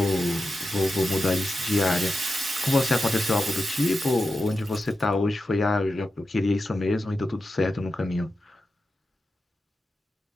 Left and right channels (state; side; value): normal; both; correlation 0.90